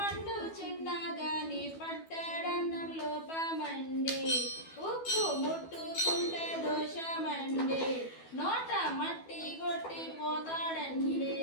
చిన్నగాని పట్టడన్నం లోపమండి ఉప్పు ముట్టుకుంటే దోషమండి నోట మట్టి కొట్టి పోతాడండి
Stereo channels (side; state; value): right; late; 12 ms